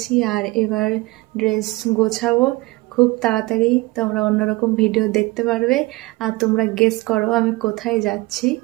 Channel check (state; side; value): quieter; left; 21.9 dB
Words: আর এবার ড্রেস গোছাবো খুব তাড়াতাড়ি। তোমরা অন্যরকম ভিডিও দেখতে পারবে, আর তোমরা গেস করো আমি কোথায় যাচ্ছি।